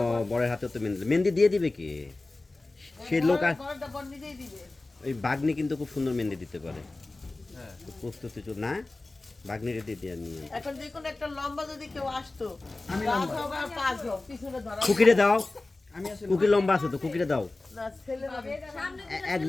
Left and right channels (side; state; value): right; quieter; 3.1 dB